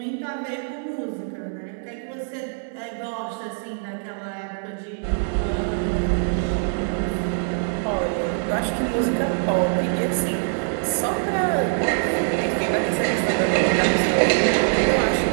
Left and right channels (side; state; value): left; silent; 63 dB below the other